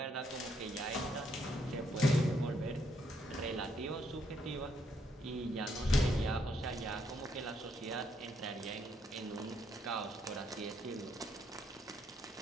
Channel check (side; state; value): both; normal; correlation 0.74